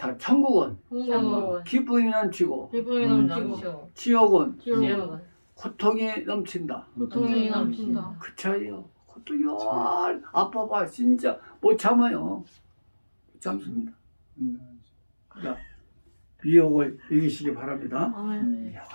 천국은 천국은 기쁨이 넘치고 기쁨이 넘치고 지옥은 지옥은 고통이 넘친다. 고통이 넘친다. 그 차이요. 고통이 아파봐 진짜 못 참아요. 못 참습니다. 자, 미혹을 이기시기 바랍니다. 아멘.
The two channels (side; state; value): both; inverted; correlation -1.00